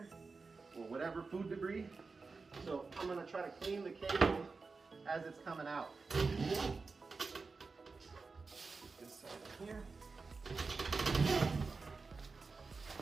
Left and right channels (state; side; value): quieter; left; 4.3 dB